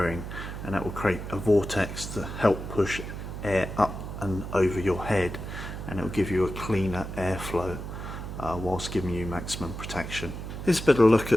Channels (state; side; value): noise; right; hum, 8 dB below the sound